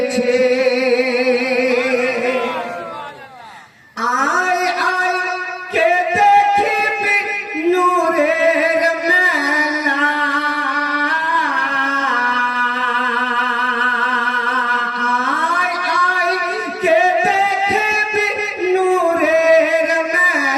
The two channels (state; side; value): identical; both; correlation 1.00